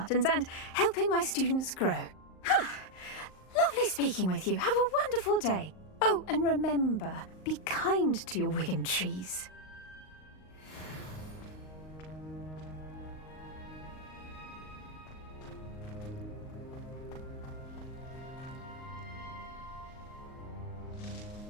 and helping my students grow. Lovely speaking with you. Have a wonderful day. Oh, and remember, be kind to your wigan trees.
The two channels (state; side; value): late; right; 38 ms